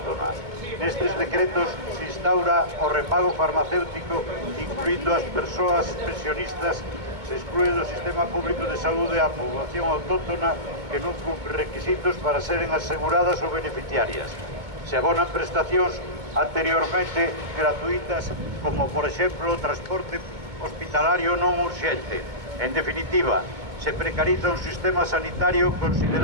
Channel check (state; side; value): late; left; 2.2 ms